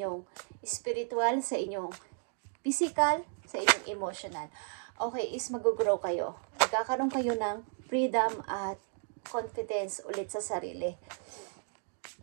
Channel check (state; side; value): silent; left; 55 dB below the other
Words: spiritual, sa inyong physical, sa inyong emotional. Okay, is mag-grow kayo. Magkakaroon kayo ng freedom at confidence ulit sa sarili.